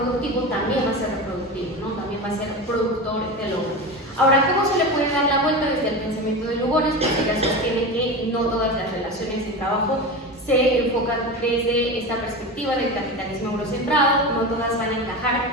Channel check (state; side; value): normal; both; correlation 0.25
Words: también va a ser reproductivo, ¿no? También va a ser productor del hombre. Ahora, ¿cómo se le puede dar la vuelta desde el pensamiento de Lugones? Porque ella sostiene que no todas las relaciones de trabajo se enfocan desde esta perspectiva del capitalismo eurocentrado, no todas van a encajar